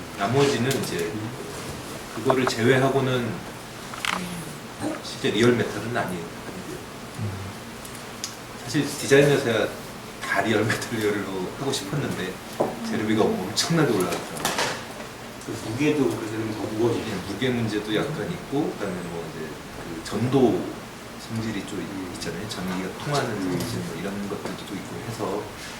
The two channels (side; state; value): both; identical; correlation 1.00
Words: 나머지는 이제 그거를 제외하고는 실제 리얼 메탈은 아니고요. 사실 디자인에서야 다 리얼 메탈리얼로 하고 싶었는데 재료비가 엄청나게 올라갔더라고요. 그 무게도 그래서 더 무거워지네. 무게 문제도 약간 있고 그다음에 뭐 이제 그 전도 성질이 좀 있잖아요. 전기가 통하는 성질 뭐 이런 것들도 있고 해서